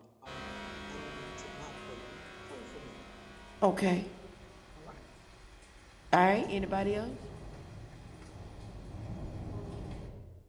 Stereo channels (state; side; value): identical; both; correlation 1.00